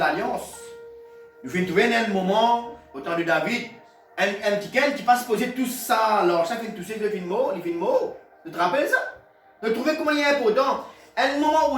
Nous fait trouver un moment, au temps de David, un petit qui passe poser tout ça, alors ça fait tout ça, il fait une mot. Tu te rappelles ça? De trouver comment il est important. Un moment où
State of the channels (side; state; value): both; identical; correlation 1.00